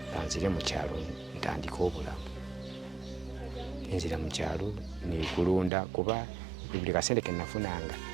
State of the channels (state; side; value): drops out; left; at 5.7 s